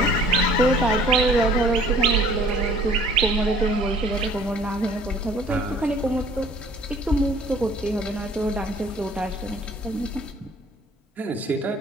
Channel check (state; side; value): normal; both; correlation 0.53